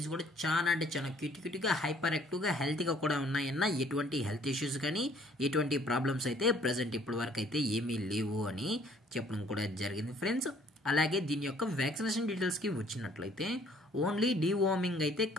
కూడా చాలా అంటే చాలా క్యూట్గా హైపర్ యాక్టివ్గా హెల్తీగా కూడా ఉన్నాయన్న. ఎటువంటి హెల్త్ ఇష్యూస్ కానీ ఎటువంటి ప్రాబ్లమ్స్ అయితే ప్రజెంట్ ఇప్పటి వరకు అయితే ఏమీ లేవు అని చెప్పడం కూడా జరిగింది ఫ్రెండ్స్. అలాగే దీని యొక్క వ్యాక్సినేషన్ డీటెయిల్స్కి వచ్చినట్లయితే ఓన్లీ డీవార్మింగ్ అయితే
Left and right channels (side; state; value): both; normal; correlation 0.59